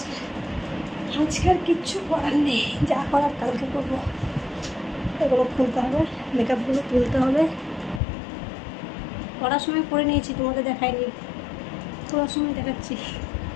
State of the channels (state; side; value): drops out; right; at 8.0 s